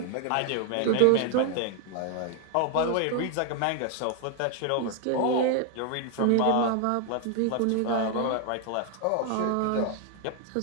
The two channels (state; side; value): different; both; correlation 0.00